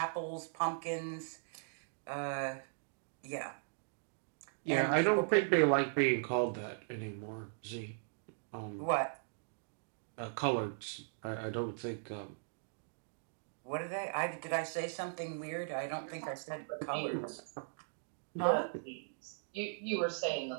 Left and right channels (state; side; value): silent; left; digital silence